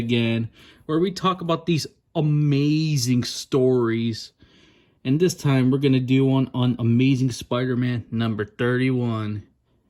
where we talk about these amazing stories. And this time we're going to do one on Amazing Spider-Man number 31.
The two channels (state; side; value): identical; both; correlation 1.00